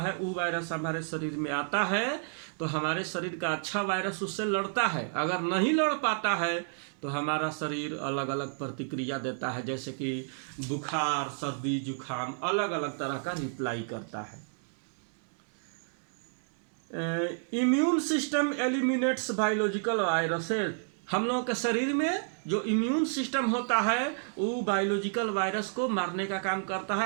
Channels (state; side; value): silent; left; digital silence